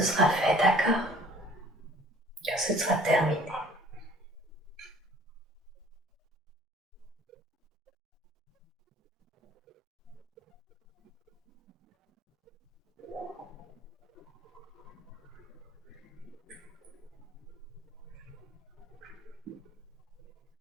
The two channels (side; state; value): both; normal; correlation 0.53